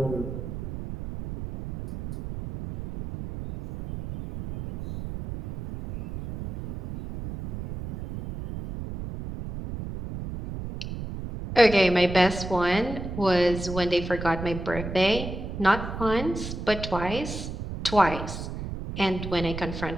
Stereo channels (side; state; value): right; noise; rumble, 8 dB below the sound